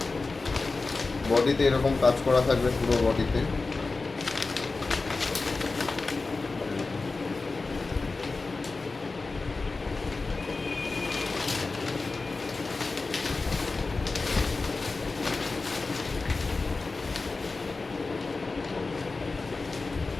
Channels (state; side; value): quieter; right; 3.8 dB